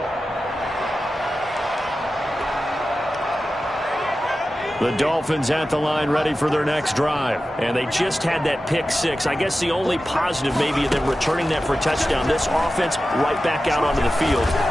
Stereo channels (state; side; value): normal; both; correlation 0.93